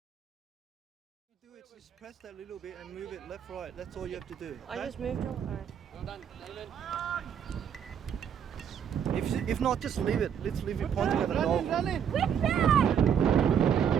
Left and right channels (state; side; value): quieter; left; 8.2 dB